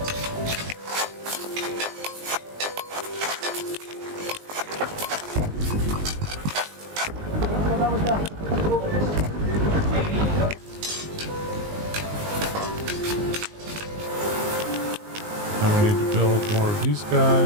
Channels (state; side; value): late; left; 19 ms